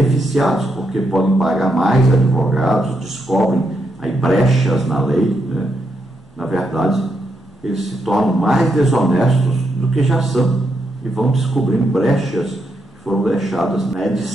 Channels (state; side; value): normal; both; correlation 0.81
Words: porque podem pagar mais advogados, descobrem aí brechas na lei, né? Na verdade, eles se tornam mais desonestos do que já são e vão descobrindo brechas que foram deixadas na